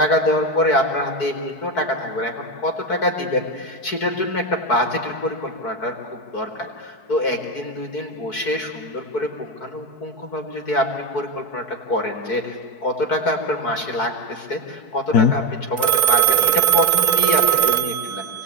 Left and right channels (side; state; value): right; late; 4.6 ms